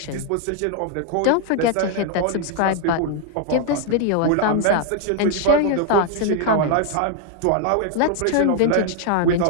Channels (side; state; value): both; different; correlation 0.00